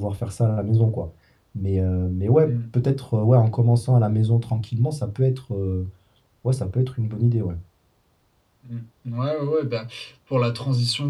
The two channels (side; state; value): both; identical; correlation 1.00